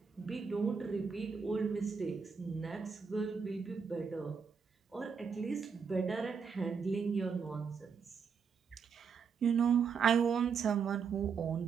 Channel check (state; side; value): quieter; left; 6.0 dB